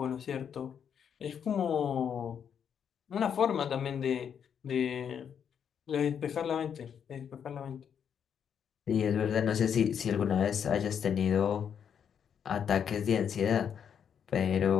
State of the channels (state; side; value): quieter; right; 7.9 dB